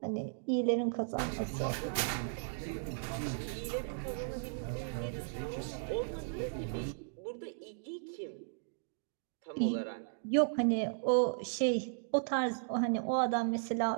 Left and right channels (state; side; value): silent; left; digital silence